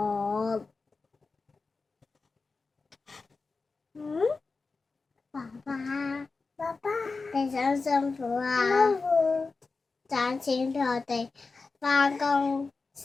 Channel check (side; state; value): right; quieter; 4.1 dB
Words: 爸爸，你辛辛苦啊！賺錢俾我哋返工